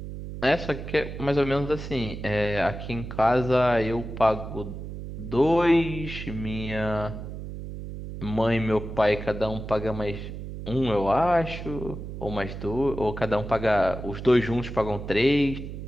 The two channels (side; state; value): right; noise; hum, 9 dB below the sound